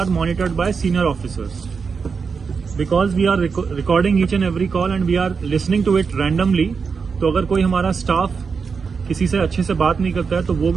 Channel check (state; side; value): quieter; left; 5.5 dB